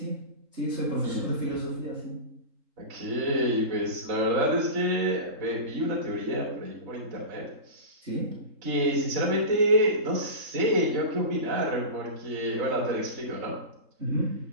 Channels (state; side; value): late; left; 3.8 ms